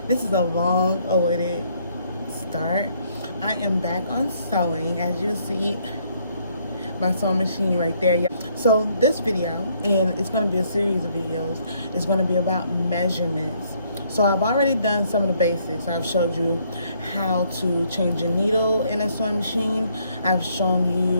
this is a long awaited start. I am back on sewing, as you see my sewing machine right there, y'all. So this video, and it's going to be a series of videos, is going to be about measurements. So I've already done some of the basics. I've showed you how to change a needle in a sewing machine. I've shown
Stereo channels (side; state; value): both; inverted; correlation -0.68